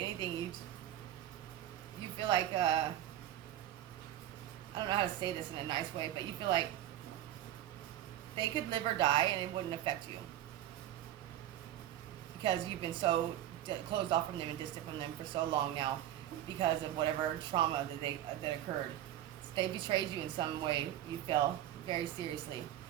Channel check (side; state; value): left; quieter; 12.5 dB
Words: you feel like, I don't know how to say this in a nice way, but you feel like they could live or die and it wouldn't affect you. Because you've been so closed off from them and distant from them for so long now because of whatever trauma that occurred. They betrayed you in some way, you feel, very seriously.